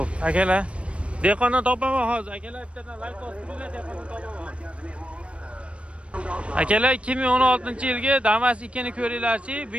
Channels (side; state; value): left; late; 0.061 ms